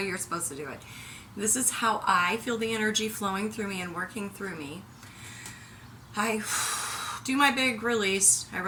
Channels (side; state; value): both; identical; correlation 1.00